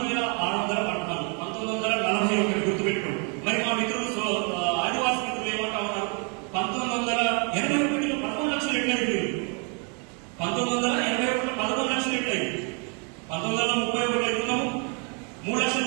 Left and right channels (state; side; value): quieter; left; 36.7 dB